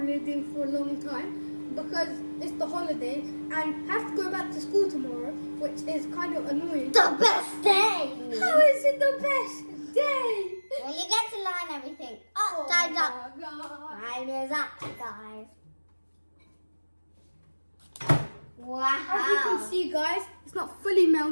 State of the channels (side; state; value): both; inverted; correlation -1.00